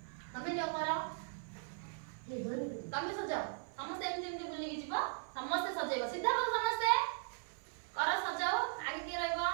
तमे जो करो तमे सजाओ समस्त एमती एमती बुली की जीवो समस्त सजेबो सीधा करो समस्त करो सजाओ आगे के रहइबो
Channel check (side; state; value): left; silent; 52 dB below the other